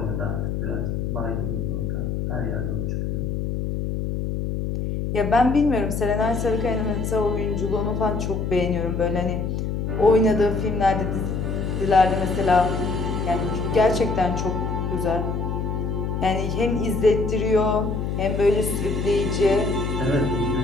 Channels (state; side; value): noise; left; hum, 2 dB below the sound